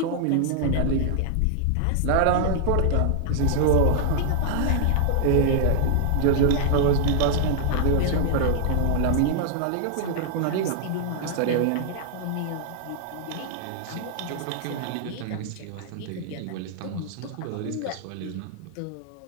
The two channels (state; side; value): different; both; correlation -0.01